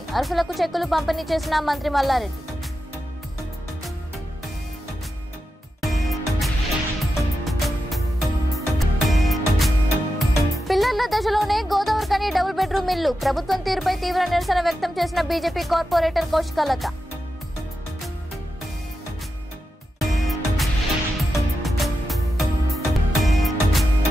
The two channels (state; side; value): normal; both; correlation 0.90